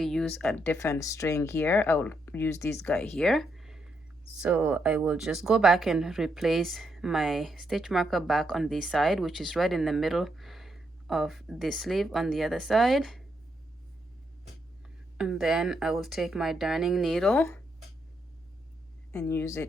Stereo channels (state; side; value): normal; both; correlation 0.79